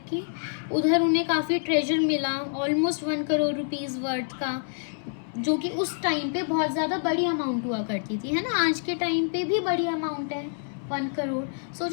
की। उधर उन्हें काफ़ी ट्रेजर मिला, ऑलमोस्ट 1 करोड़ रुपीज़ वर्थ का, जो कि उस टाइम पे बहुत ज़्यादा बड़ी अमाउंट हुआ करती थी, है ना। आज के टाइम पे भी बड़ी अमाउंट है 1 करोड़,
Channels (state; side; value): silent; right; 60 dB below the other